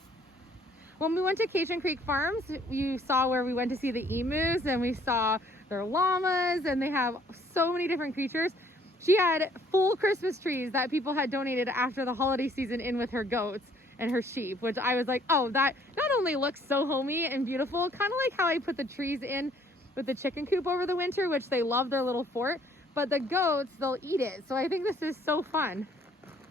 When we went to Cation Creek Farms, you saw where we went to see the emus and we saw their llamas, and they have so many different creatures. She had full Christmas trees that people had donated after the holiday season in with her goats and her sheep, which I was like, oh, that not only looks so homey and beautiful, kind of like how I put the trees in with the chicken coop over the winter, which they love their little fort, but the goats, they'll eat it. So I think this is so fun.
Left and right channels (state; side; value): normal; both; correlation 0.61